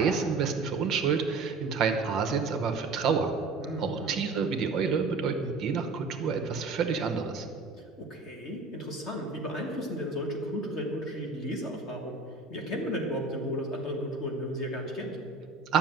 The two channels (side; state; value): left; quieter; 3.9 dB